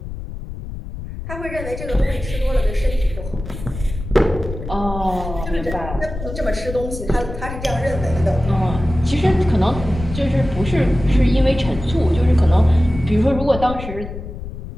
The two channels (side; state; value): left; noise; rumble, 9 dB below the sound